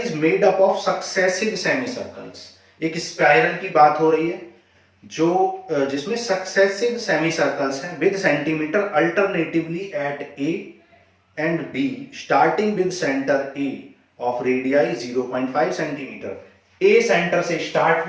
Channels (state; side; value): identical; both; correlation 1.00